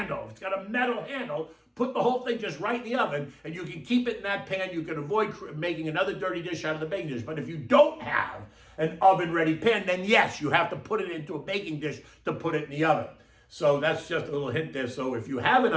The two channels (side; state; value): both; identical; correlation 1.00